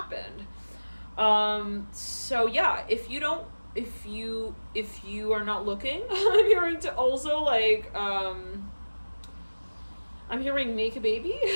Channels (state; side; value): inverted; both; correlation -1.00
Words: So yeah, if you are not looking, I'm hearing to also like, I'm hearing make a baby.